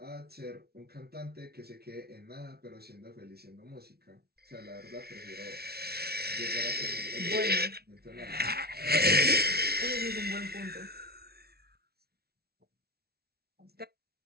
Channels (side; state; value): left; late; 0.45 ms